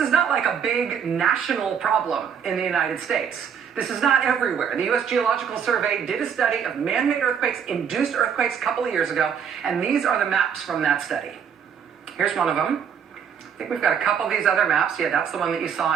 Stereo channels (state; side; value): quieter; left; 7.4 dB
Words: is not like a big national problem in the United States. This is not everywhere. The U.S. Geological Survey did a study of man-made earthquakes, induced earthquakes a couple of years ago, and these are the maps from that study. Here's one of them. I think we've got a couple of these other maps. Yeah, that's the one that you